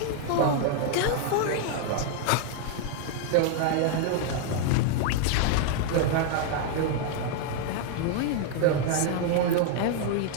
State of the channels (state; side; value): different; both; correlation 0.00